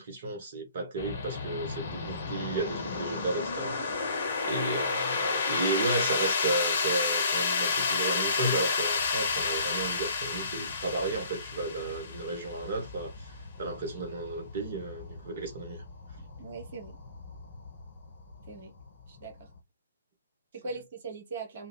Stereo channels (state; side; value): inverted; both; correlation -0.54